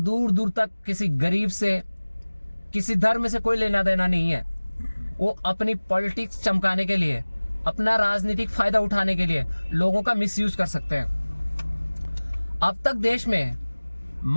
दूर तक किसी गरीब से, किसी धर्म से कोई लेना देना नहीं है, वो अपनी पॉलिटिक्स चमकाने के लिए, अपना राजनीतिक फायदा उठाने के लिए लोगों का मिसयूज कर सकते हैं। अब तक देश में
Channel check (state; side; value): inverted; both; correlation -1.00